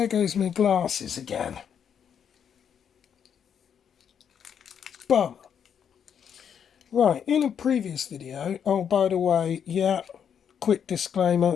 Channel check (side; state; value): right; quieter; 8.0 dB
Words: goes my glasses again. Bum. Right, in a previous video, oh, by the way, yeah, quick